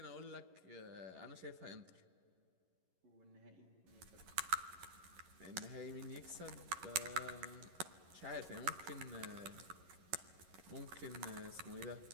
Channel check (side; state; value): left; late; 11 ms